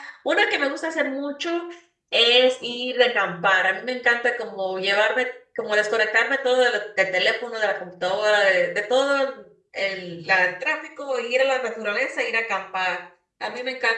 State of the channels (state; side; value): identical; both; correlation 1.00